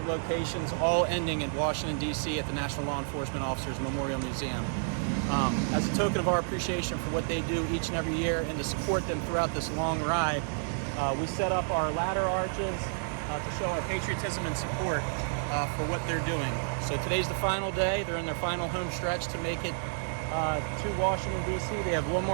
locations, all ending in Washington, D.C. at the National Law Enforcement Officers Memorial Museum. As a token of our appreciation for what they do each and every year and to support them throughout this long ride, we set up our ladder arches to show our patriotism and support for what they're doing. So today's the final day. They're in their final home stretch to make it to Washington, D.C. They have one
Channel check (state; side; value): silent; left; digital silence